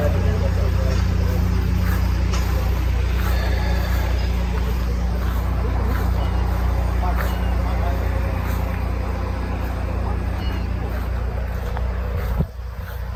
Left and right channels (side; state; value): both; identical; correlation 1.00